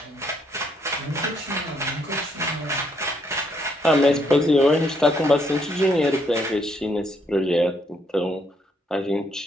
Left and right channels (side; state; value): both; normal; correlation 0.72